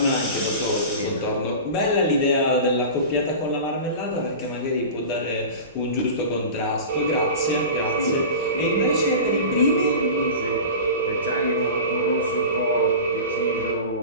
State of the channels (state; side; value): inverted; both; correlation -0.32